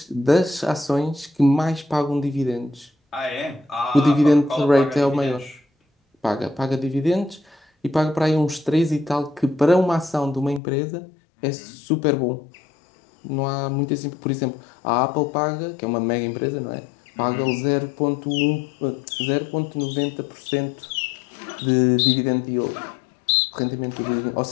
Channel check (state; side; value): drops out; right; at 10.6 s